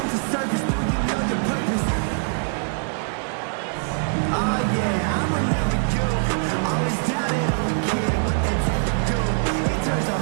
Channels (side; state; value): left; silent; 63 dB below the other